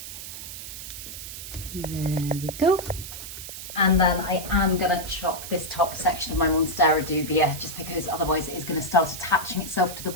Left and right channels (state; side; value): noise; right; hiss, 10 dB below the sound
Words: There we go. And then I am going to chop this top section of my Monstera dubia, just because otherwise it is going to start attaching itself to the